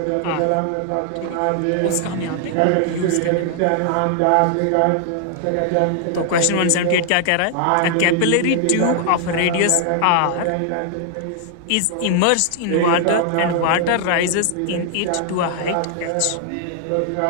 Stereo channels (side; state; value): both; different; correlation 0.00